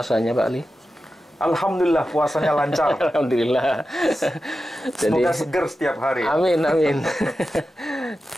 Pak Ali? Alhamdulillah puasanya lancar. Alhamdulillah. Semoga seger setiap hari. Amin, amin.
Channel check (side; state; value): both; normal; correlation 0.92